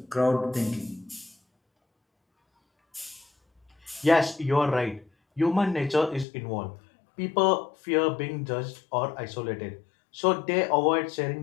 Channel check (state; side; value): drops out; right; at 6.2 s